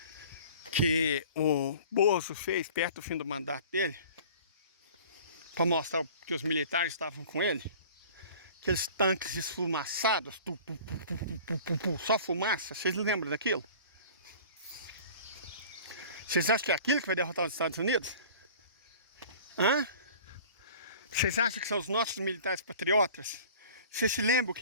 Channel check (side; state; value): both; inverted; correlation -0.45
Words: que o Bozo fez perto do fim do mandato dele? Para mostrar que os militares estavam com ele? Aqueles tanques esfumaçados, só fumaça. Vocês lembram daquilo? Vocês acham que é aquilo que vai derrotar os Estados Unidos? Hã? Vocês acham que são os nossos militares patriotas? Vocês se lembram o